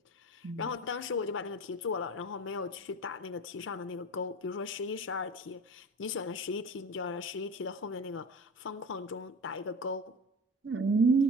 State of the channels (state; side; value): normal; both; correlation 0.31